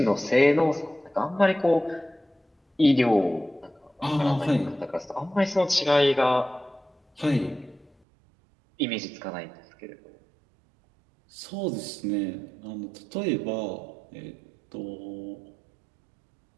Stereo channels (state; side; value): drops out; left; at 7.9 s